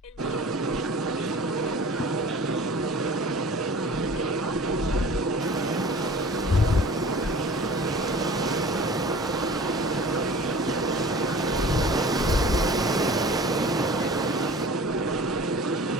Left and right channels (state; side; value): normal; both; correlation 0.43